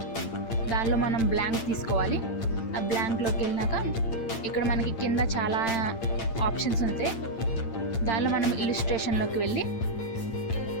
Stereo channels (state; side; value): late; right; 8.9 ms